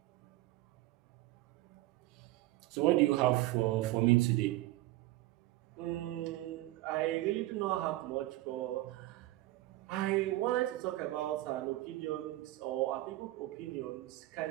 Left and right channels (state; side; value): quieter; left; 17.4 dB